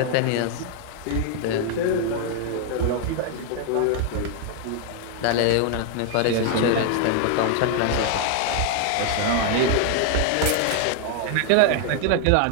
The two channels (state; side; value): different; both; correlation 0.00